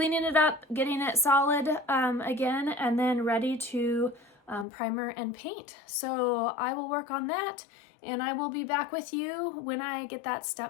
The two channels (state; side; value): drops out; right; at 4.7 s